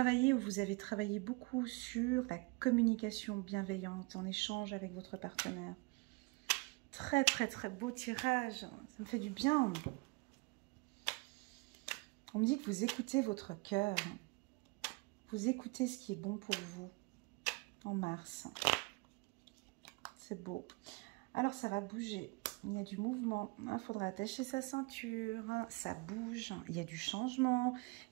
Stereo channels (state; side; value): quieter; left; 27.6 dB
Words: ou vous avez travaillé beaucoup sur la communication bienveillante en échange avec votre partenaire. Très, très, très beau tirage. Ça me fait du bien. On me dit que vous écoutez votre cœur. Vous écoutez ce qui est bon pour vous en mars. C'est beau. Alors, ça va bouger. Il y a du mouvement. Il faudra attacher sa ceinture. Ça bouge. Il y a du changement.